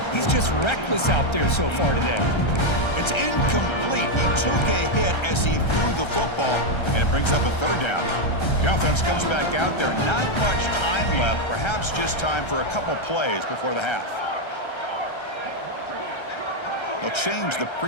He's just reckless out there so far today. It's incomplete. He took a hit as he threw the football, and it brings up a third down. The offense comes back out there. Not much time left, perhaps just time for a couple plays before the half. They'll change the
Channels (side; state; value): right; late; 1.3 ms